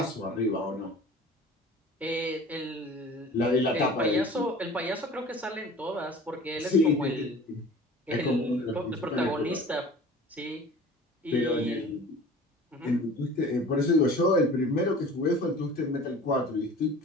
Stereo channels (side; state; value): both; normal; correlation 0.43